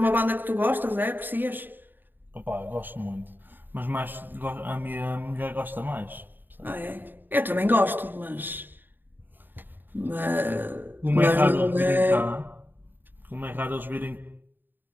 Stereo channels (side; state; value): left; late; 0.092 ms